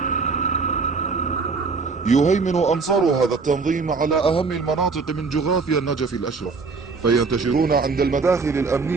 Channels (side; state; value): left; quieter; 4.6 dB